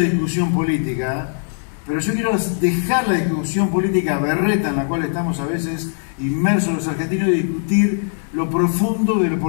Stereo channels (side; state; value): right; silent; digital silence